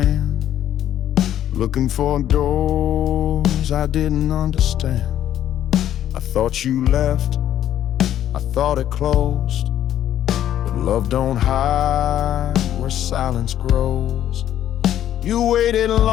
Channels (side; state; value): right; quieter; 11.3 dB